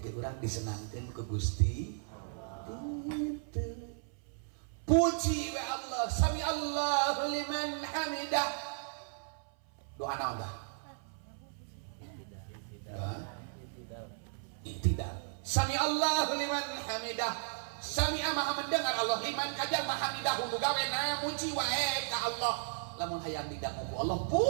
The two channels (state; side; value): silent; left; 54 dB below the other